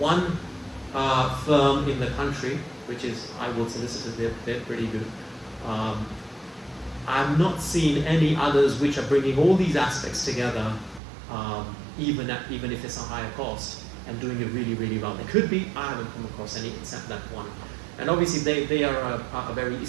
firm in the country, which is Iwood Solicitors, they're pretty good. I've not seen any others which are bringing all these aspects together, even if it's a higher cost, and doing it really, really well. There could be, I haven't come across any except that one. And obviously they are a very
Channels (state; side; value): drops out; left; at 11.0 s